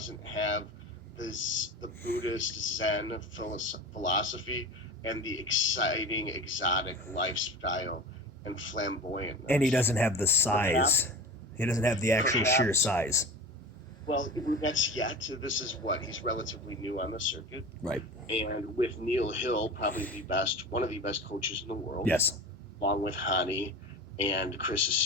have the Buddhist Zen philosophy and the exciting, exotic lifestyle and flamboyant. And he doesn't have the size. He doesn't have the actual sheer size. Well, that's yet. This is he's relatively new on the circuit. Right. And with Neil Hill, probably one of the best coaches in the world. Yes. Along with Hani and Chris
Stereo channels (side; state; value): both; normal; correlation 0.32